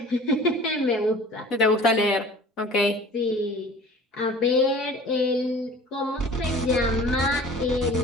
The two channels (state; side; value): normal; both; correlation 0.44